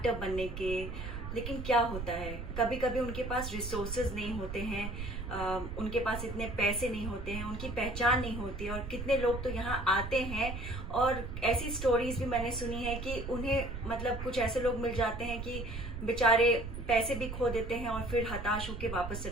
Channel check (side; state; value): right; noise; rumble, 7 dB below the sound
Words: बनने के। लेकिन क्या होता है, कभी कभी उनके पास रिसोर्सेज नहीं होते हैं, उनके पास इतने पैसे नहीं होते हैं, उनकी पहचान नहीं होती है। और कितने लोग तो यहाँ आते हैं और ऐसी स्टोरीज भी मैंने सुनी है कि उन्हें मतलब कुछ ऐसे लोग मिल जाते हैं कि बेचारे पैसे भी खो देते हैं और फिर हताश होकर वापस